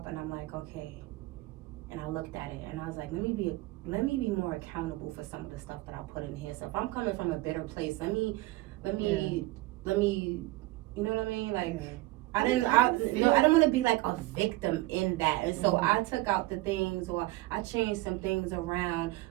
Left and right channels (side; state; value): left; quieter; 19.3 dB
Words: and I'm like, okay. And I looked at it and I was like, let me be more accountable for some of the stuff that I put in here. So if I'm coming from a bitter place, let me, you know what I mean? Like, Yeah. I don't want to be like a victim in that. And so I took out the things, or I changed some things around